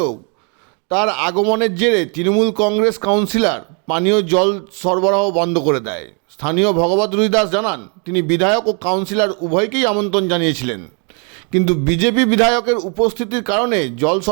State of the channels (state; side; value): quieter; left; 37.4 dB